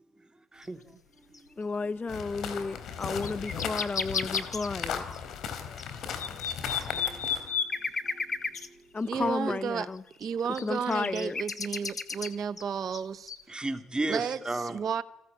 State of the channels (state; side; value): normal; both; correlation 0.65